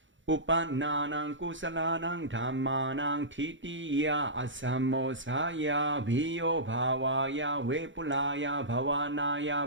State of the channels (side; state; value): left; late; 0.55 ms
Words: 우빤나낭 꾸살라낭 담마낭 티티야 아삼모사야 비요바와야 웨불라야